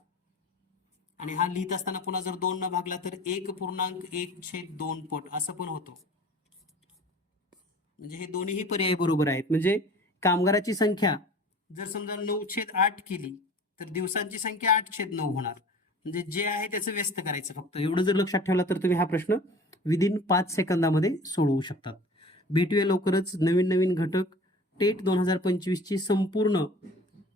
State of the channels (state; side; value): normal; both; correlation 0.43